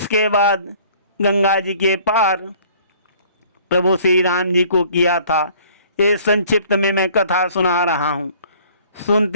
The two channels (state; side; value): inverted; both; correlation -0.55